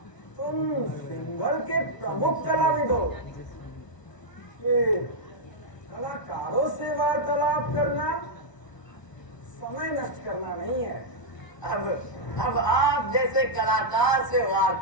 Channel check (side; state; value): right; late; 1.0 ms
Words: तुम सिंघल के प्रमुख कलाविद हो, कलाकारों से वार्तालाप करना समय नष्ट करना नहीं है। अब आप जैसे कलाकार से